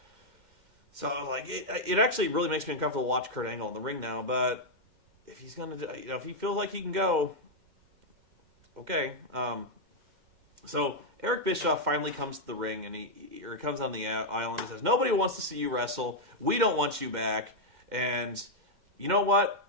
So like it actually really makes me uncomfortable to watch Kurt Angle in the ring now. But if he's gonna, if he feels like he can go, okay. So Eric Bischoff finally comes to the ring and he comes on the island and says, "Nobody wants to see you wrestle. We don't want you back. And you know what?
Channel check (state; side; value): late; left; 2.1 ms